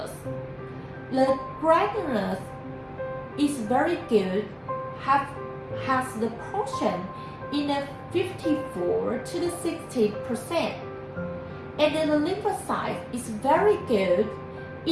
The granules is very good, has the portion in a 54 to the 60%. And then the lymphocyte is very good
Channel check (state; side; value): identical; both; correlation 1.00